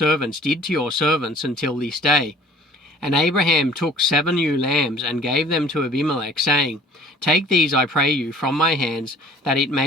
did to your servants until this day." And Abraham took 7 ewe lambs and gave them to Abimelech, saying, "Take these, I pray you, from my hands, that it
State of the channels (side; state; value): both; normal; correlation 0.51